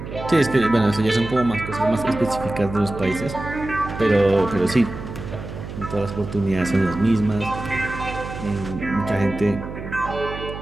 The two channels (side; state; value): right; noise; hum, 10 dB below the sound